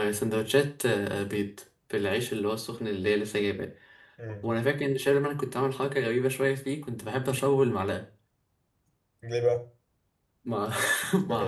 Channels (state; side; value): identical; both; correlation 1.00